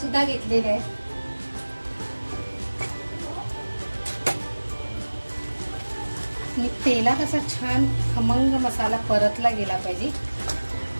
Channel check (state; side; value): inverted; both; correlation -1.00